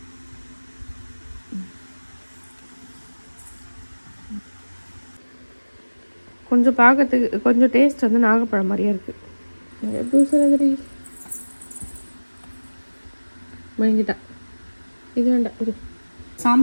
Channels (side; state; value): both; inverted; correlation -1.00